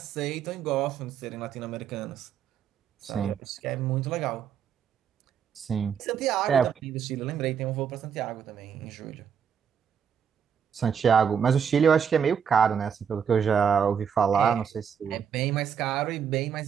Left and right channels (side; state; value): left; quieter; 7.5 dB